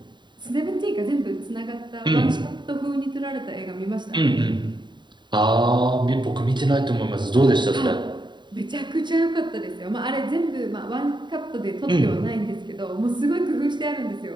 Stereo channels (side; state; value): left; late; 0.22 ms